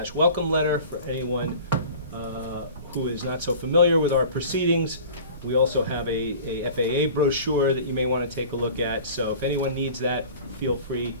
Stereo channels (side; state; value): both; inverted; correlation -0.42